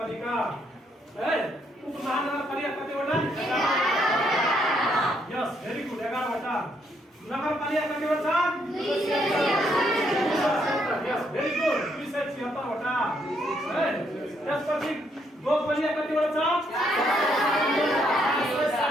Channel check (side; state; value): both; normal; correlation 0.73